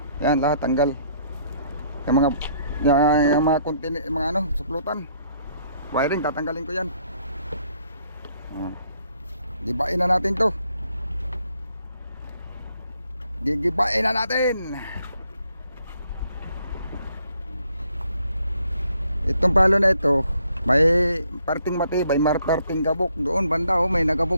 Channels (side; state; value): both; inverted; correlation -0.68